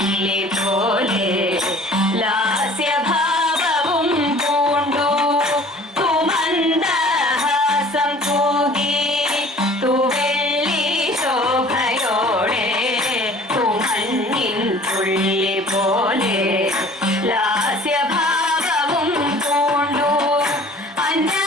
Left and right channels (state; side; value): normal; both; correlation 0.49